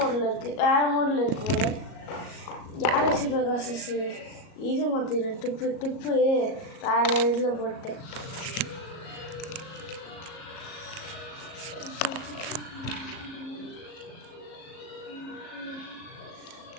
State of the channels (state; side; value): late; right; 37 ms